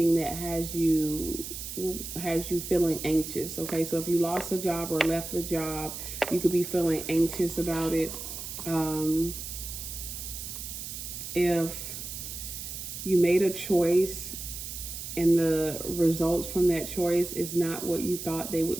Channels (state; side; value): noise; right; hiss, 8 dB below the sound